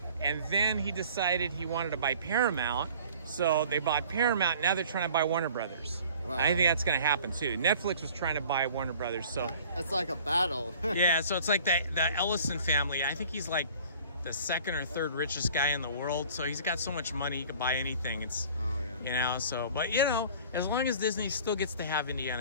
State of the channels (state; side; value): inverted; both; correlation -0.48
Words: And then he decided he wanted to buy Paramount. So they bought Paramount. Now they're trying to buy Warner Brothers. Wow. I think that's going to happen too. Netflix was trying to buy Warner Brothers. So it's like a battle. yeah, so it's like the Ellison family. I think he's like the second or third richest guy in the world. So he's got so much money he could buy anything. It's, you know, so, but you know, as long as Disney still gets to have